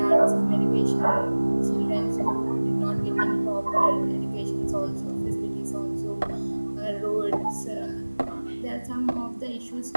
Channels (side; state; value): both; inverted; correlation -1.00